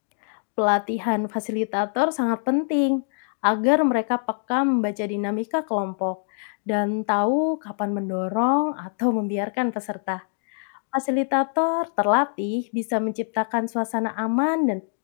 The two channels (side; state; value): right; silent; digital silence